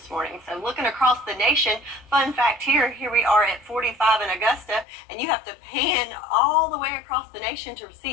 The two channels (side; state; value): right; drops out; at 4.9 s